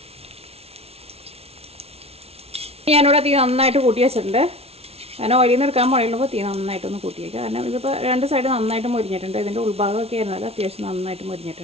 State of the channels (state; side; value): late; left; 0.30 ms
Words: ഞാനിവിടെ തീ നന്നായിട്ട് കൂട്ടി വെച്ചിട്ടുണ്ട്. കാരണം ഓയിലിൽ നിന്ന് എടുക്കാൻ പോയുള്ളപ്പോൾ തീ നന്നായിട്ടൊന്ന് കൂട്ടി വയ്ക്കുക. കാരണം ഇതിപ്പോൾ 2 സൈഡ് നന്നായിട്ട് മുരിഞ്ഞിട്ടുണ്ട്. ഇതിൻ്റെ ഉൾഭാഗമൊക്കെ ആയിരുന്നാലും അത്യാവശ്യം നന്നായിട്ട്